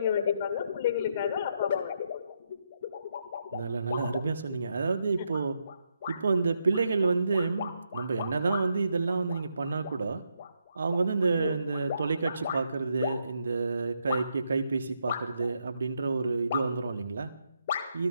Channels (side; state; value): both; inverted; correlation -0.79